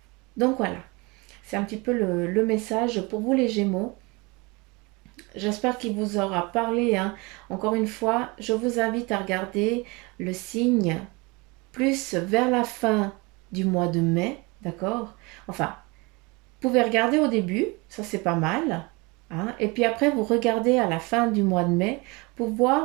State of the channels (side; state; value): left; quieter; 26.5 dB